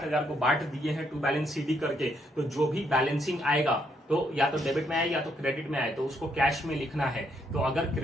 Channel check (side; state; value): both; normal; correlation 0.74